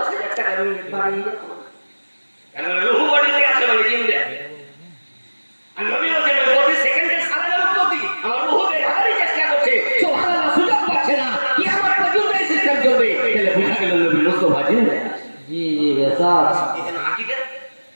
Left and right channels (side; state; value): both; inverted; correlation -1.00